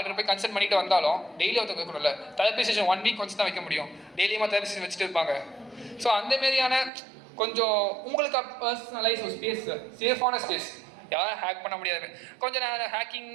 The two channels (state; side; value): drops out; left; at 6.9 s